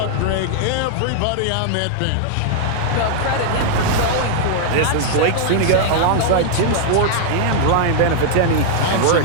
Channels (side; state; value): both; different; correlation -0.01